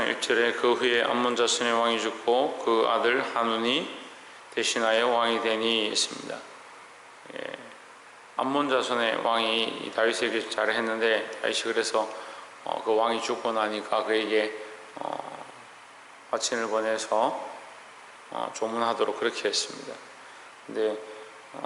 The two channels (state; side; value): identical; both; correlation 1.00